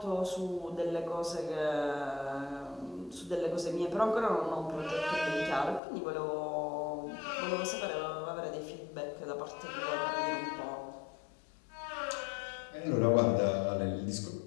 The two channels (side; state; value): right; drops out; at 5.8 s